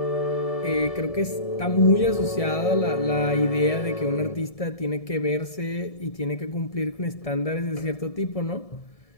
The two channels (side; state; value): right; late; 1.7 ms